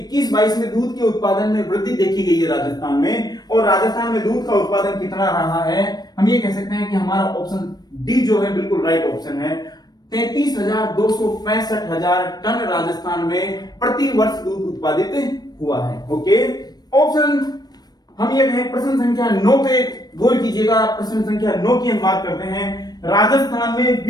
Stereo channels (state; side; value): late; right; 0.19 ms